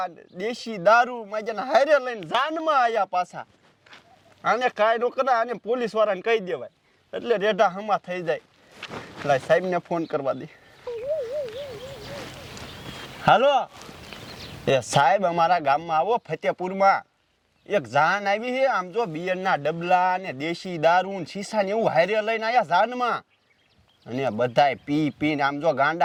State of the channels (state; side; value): identical; both; correlation 1.00